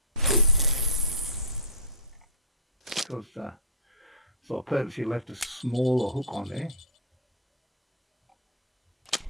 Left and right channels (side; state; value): both; normal; correlation -0.13